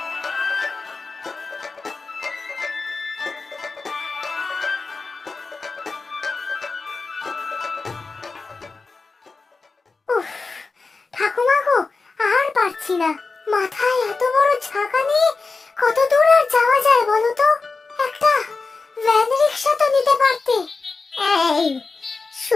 উফ, ঠাকুমা গো, আর পারছি না, মাথায় এত বড় ছাকা নিয়ে কত দূর আর যাওয়া যায় বলো তো? একটা ভ্যান রিক্সা তো নিতে পারতে। এই,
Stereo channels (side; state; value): right; quieter; 4.1 dB